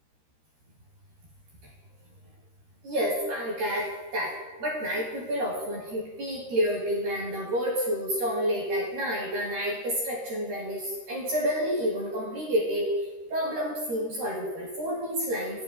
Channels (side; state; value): left; late; 13 ms